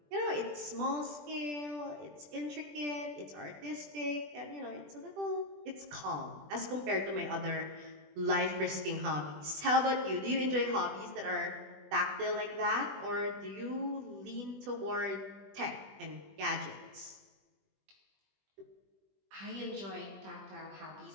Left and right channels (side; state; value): left; late; 20 ms